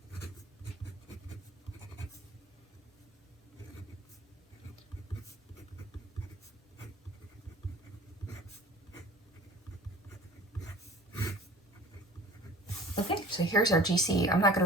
Okay, so here's our GC. I'm not going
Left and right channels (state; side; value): normal; both; correlation 0.44